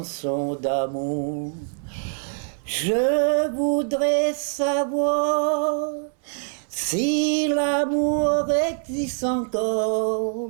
d'amour. Je voudrais savoir si l'amour existe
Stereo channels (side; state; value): left; silent; digital silence